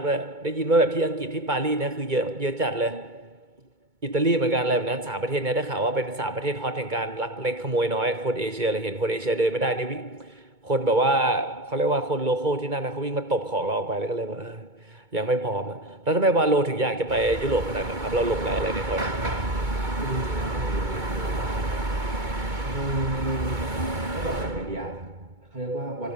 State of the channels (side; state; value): left; late; 2.2 ms